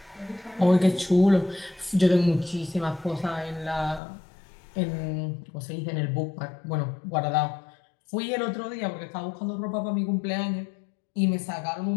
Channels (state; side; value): drops out; right; at 4.0 s